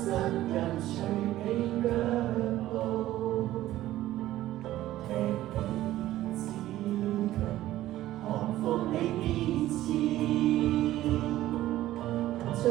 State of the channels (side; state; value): left; quieter; 14.7 dB